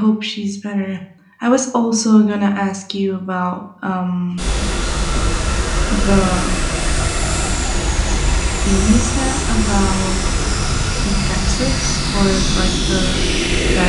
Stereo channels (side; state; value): both; identical; correlation 1.00